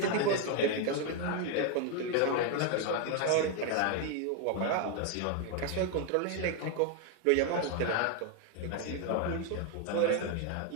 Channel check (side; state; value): both; different; correlation 0.01